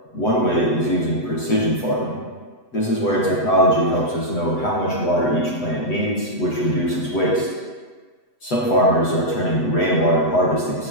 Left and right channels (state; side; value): late; right; 8.0 ms